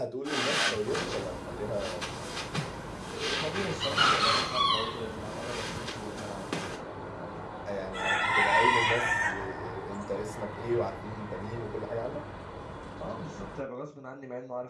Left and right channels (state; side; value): identical; both; correlation 1.00